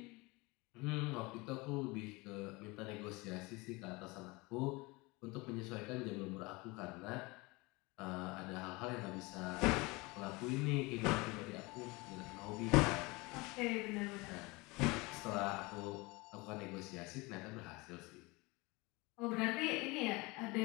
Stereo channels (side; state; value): right; quieter; 24.6 dB